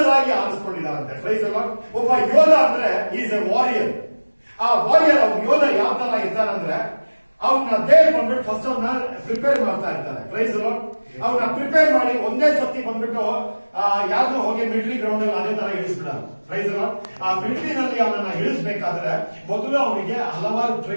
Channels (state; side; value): inverted; both; correlation -1.00